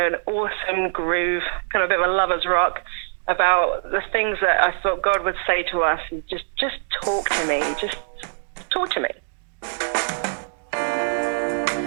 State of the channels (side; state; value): left; silent; digital silence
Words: awesome groove, kind of a bit of a lover's rock about the things that I thought God would say to us. Just talk to me. Just talk to me.